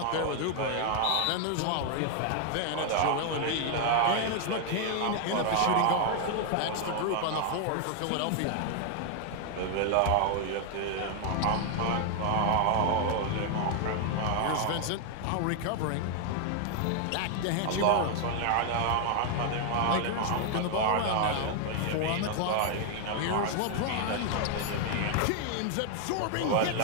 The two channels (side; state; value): both; different; correlation 0.00